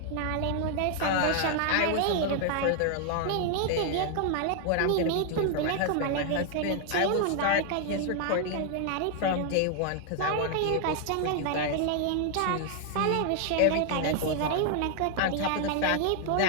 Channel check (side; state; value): both; different; correlation 0.00